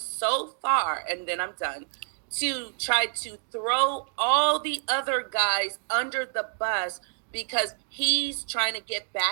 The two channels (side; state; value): left; silent; digital silence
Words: far, and then I'm done, to try to throw all the other guys under the bus because he's trying to get